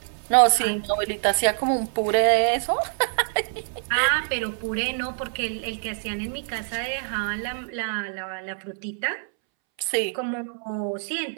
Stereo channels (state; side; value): silent; left; 61 dB below the other